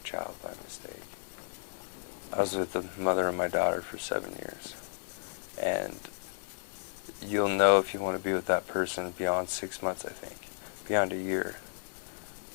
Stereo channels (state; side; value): silent; right; 56 dB below the other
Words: child by mistake. I was with the mother of my daughter for 7 years, and you'll know if you want to be with that person beyond 6 months, I think, beyond a year.